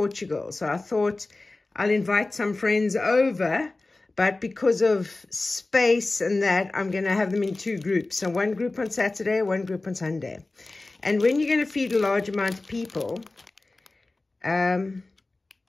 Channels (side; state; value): right; quieter; 3.2 dB